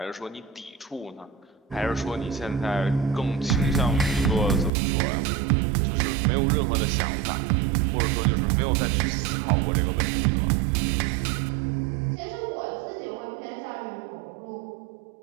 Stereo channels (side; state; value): left; drops out; at 4.7 s